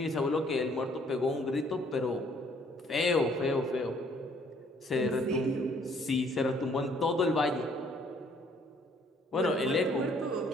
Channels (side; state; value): both; normal; correlation 0.62